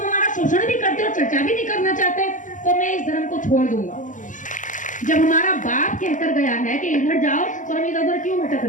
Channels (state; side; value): late; right; 0.37 ms